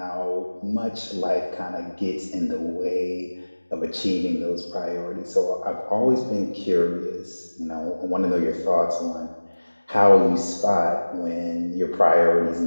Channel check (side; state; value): both; inverted; correlation -1.00